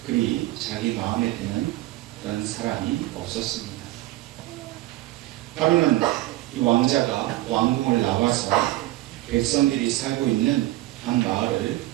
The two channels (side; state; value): left; quieter; 17.3 dB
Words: 그리 자기 마음에 드는 그런 사람이 없었습니다. 하루는 이 왕자가 왕궁을 나와서 백성들이 살고 있는 한 마을을